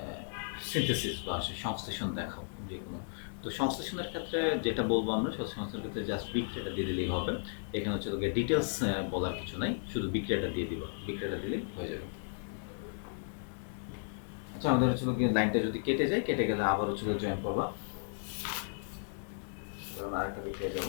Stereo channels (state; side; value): silent; right; 55 dB below the other